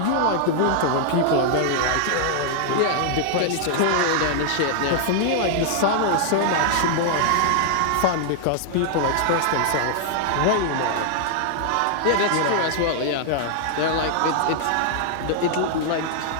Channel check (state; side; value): different; both; correlation -0.01